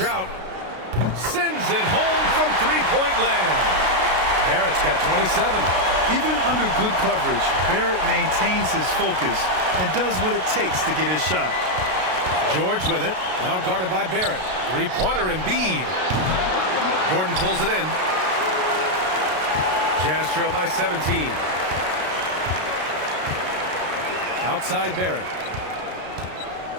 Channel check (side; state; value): left; late; 33 ms